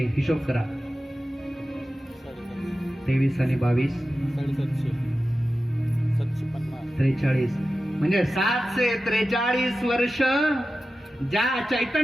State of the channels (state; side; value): normal; both; correlation 0.94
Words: हिशोब करा, 23 आणि 22 43, म्हणजे 743 वर्ष ज्या